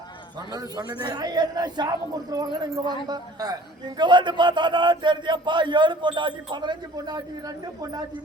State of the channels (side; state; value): both; normal; correlation 0.50